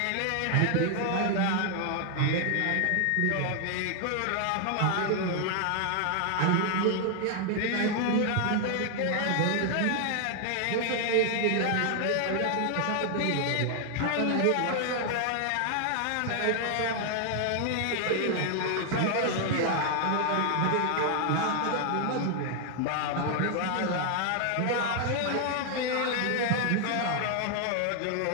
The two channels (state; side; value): different; both; correlation 0.00